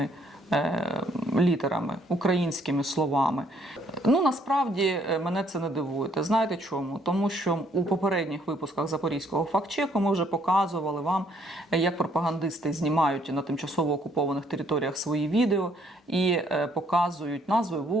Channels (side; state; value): both; normal; correlation 0.66